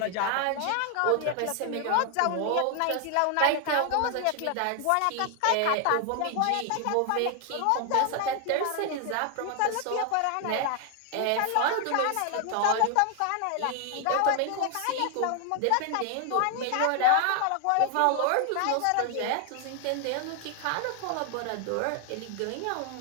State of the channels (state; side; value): different; both; correlation 0.00